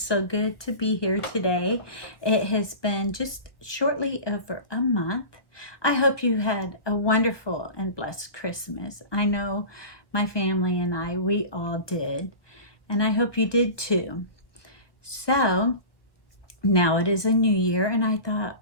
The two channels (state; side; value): late; right; 1.3 ms